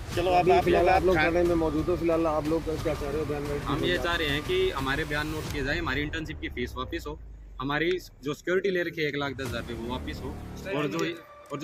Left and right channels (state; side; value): identical; both; correlation 1.00